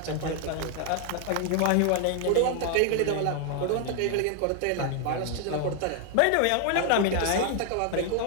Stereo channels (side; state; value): both; different; correlation 0.00